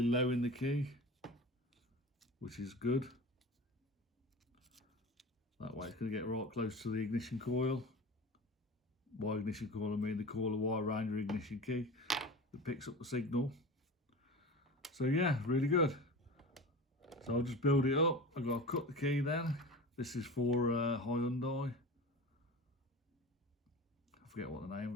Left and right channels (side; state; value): both; normal; correlation 0.32